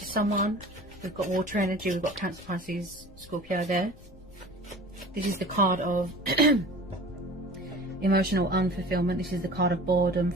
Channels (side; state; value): left; noise; rumble, 22 dB below the sound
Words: someone. We've got water energy, we've got Cancer, Pisces, Scorpio there. This is the card of emotional unfulfillment. This is the card of boredom,